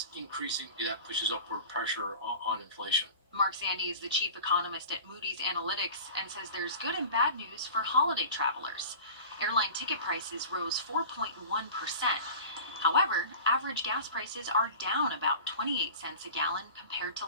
increasing, that pushes upward pressure on inflation. Mark Zandi is the chief economist at Moody's Analytics and says there's good and bad news for holiday travelers. Airline ticket prices rose 4.1%. However, average gas prices are down about 28 cents a gallon compared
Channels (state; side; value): inverted; both; correlation -0.37